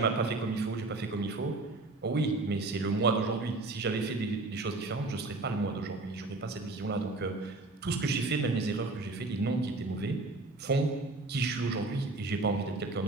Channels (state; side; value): quieter; left; 3.2 dB